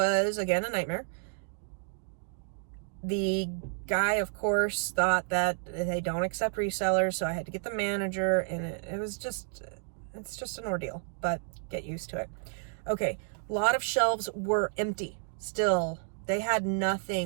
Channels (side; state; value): left; silent; 57 dB below the other